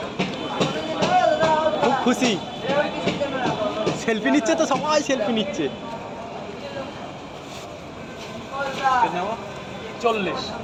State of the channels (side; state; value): both; identical; correlation 1.00